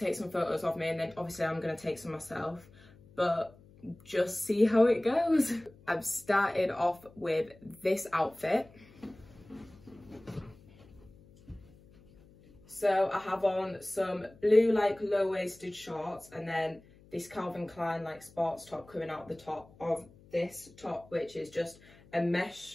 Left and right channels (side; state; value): left; noise; hum, 25 dB below the sound